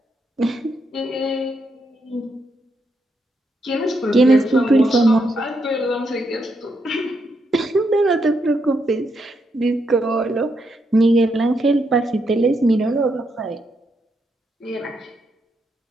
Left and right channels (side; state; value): both; normal; correlation 0.80